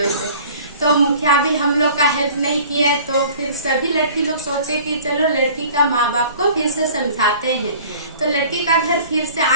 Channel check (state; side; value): inverted; both; correlation -0.46